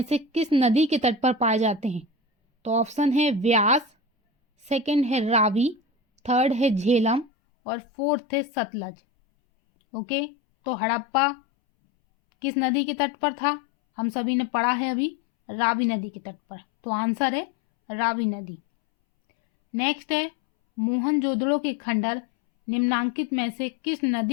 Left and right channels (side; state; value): right; drops out; at 7.3 s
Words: से किस नदी के तट पर पाए जाते हैं? तो ऑप्शन है व्यास, सेकंड है रावी, थर्ड है झेलम और फोर्थ है सतलज। ओके, तो हड़प्पा किस नदी के तट पर था? हम सभी ने पढ़ा है अभी, रावी नदी के तट पर, तो आंसर है रावी नदी। नेक्स्ट है मोहनजोदड़ो के खंडहर निम्नांकित में से किस